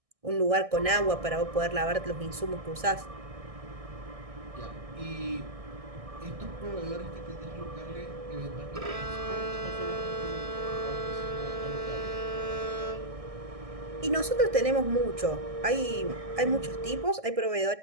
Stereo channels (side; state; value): left; late; 1.6 ms